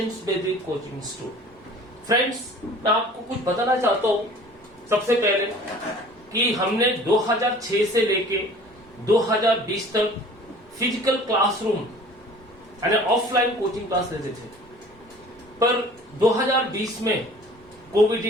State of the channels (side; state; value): both; normal; correlation 0.47